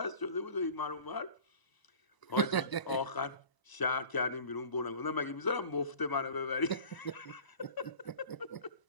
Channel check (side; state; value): right; late; 1.0 ms